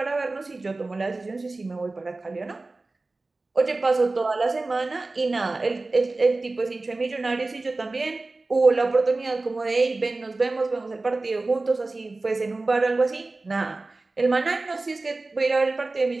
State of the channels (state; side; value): quieter; left; 3.3 dB